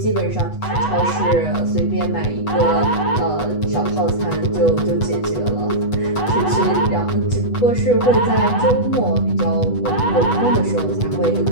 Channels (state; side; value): late; right; 8.1 ms